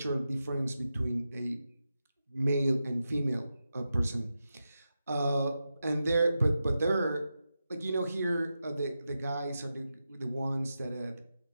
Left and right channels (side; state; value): both; inverted; correlation -0.90